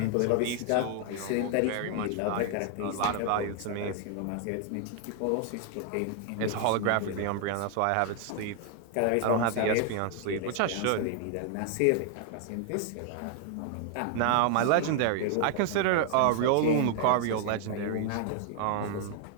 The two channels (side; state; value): both; different; correlation 0.00